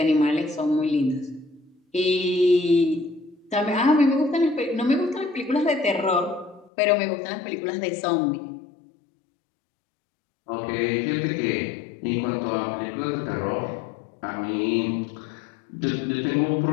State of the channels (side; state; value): right; drops out; at 6.7 s